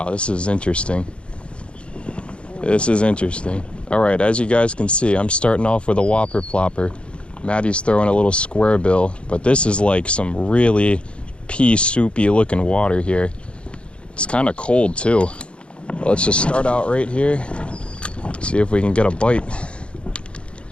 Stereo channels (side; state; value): right; late; 0.058 ms